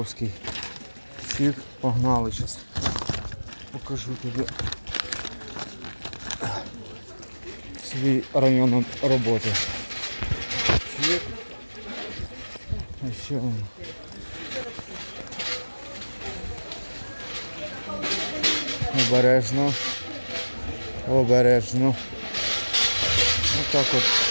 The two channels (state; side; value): inverted; both; correlation -1.00